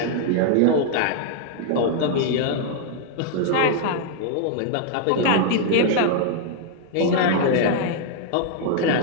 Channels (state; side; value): different; both; correlation -0.01